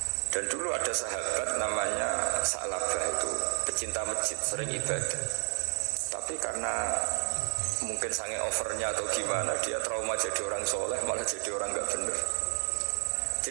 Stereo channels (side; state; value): left; silent; 57 dB below the other